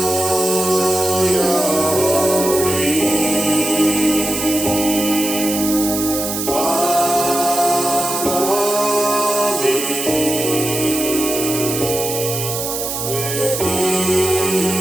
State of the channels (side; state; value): right; noise; hiss, 4 dB below the sound